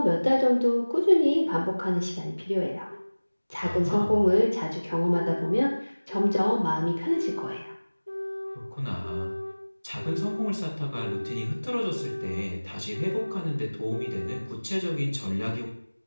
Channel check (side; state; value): both; inverted; correlation -1.00